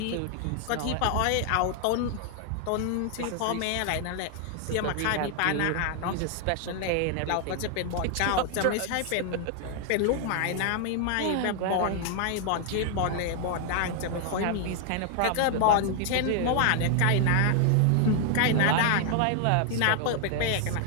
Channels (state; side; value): different; both; correlation 0.00